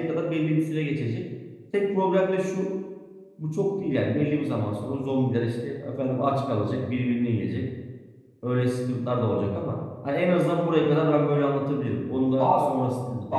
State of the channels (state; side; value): identical; both; correlation 1.00